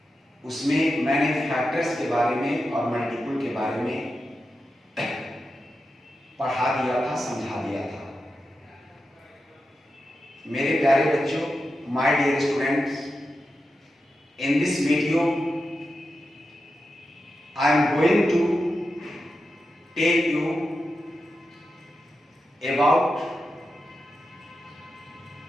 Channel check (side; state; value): both; normal; correlation 0.90